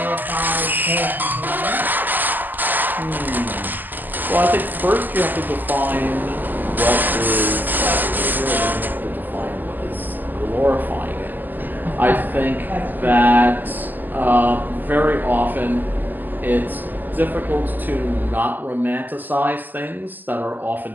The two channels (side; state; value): left; late; 0.090 ms